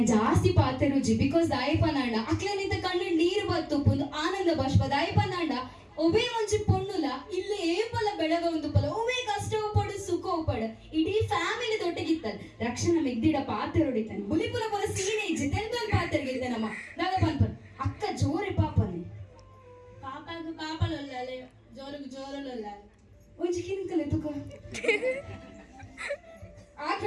ಜಾಸ್ತಿ ಪಾತೆ ರುಚಿ ಬಿಕಾಸ್ ದಾಯಪನಾಂಡ ಅಕ್ಲನಿಂದ ಕಣ್ಣು ನೀರು ಬತ್ತು ಒಂದು ಆನಂದ ಬಾಷ್ಪ ದಾಯಪನಾಂಡ ಒಬೇ ಒಂಚಿ ಪೊಣ್ಣುಲ ಇಲ್ಲಿ ಏಪಲ ಬೆಳಗ ಒಂದು ಪಲ ಒಬೇ ಕಷ್ಟ ಪಡು ಸುಖ ಪಡ ಇಡೀ ಫ್ಯಾಮಿಲಿ ದೊಡ್ಡಗಿತ್ತಲ್ ರಕ್ಷಣ ಮೆಗ್ದಿಡ ಪಾತೆ ಹೊಡಿತಾನೆ ಬುಲಿಪುರ ಪರ ಸೀನೆ ಇಜ್ಜಿ ತೆಲ್ತೊಂದು ಪಾತೆರ್ಗಿದ್ದೆ ನಮ್ಮ ದಾದ ಪನ್ಪನ್ ಅಕ್ಕ ಜೋರೆ ಪಾಪನೆ ಪಾಪಗ ಪಾಪಲೊಲ್ಲಾಲೆ ಜೋರಿಗೆ ಜೋರಲೊಲ್ಲಾಲೆ ಒಂಚಿ ಕಿನ್ಕಲೆ ತುಕ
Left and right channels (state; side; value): identical; both; correlation 1.00